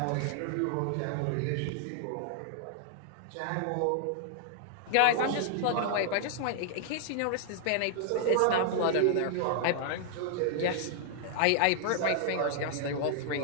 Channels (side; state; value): both; different; correlation -0.01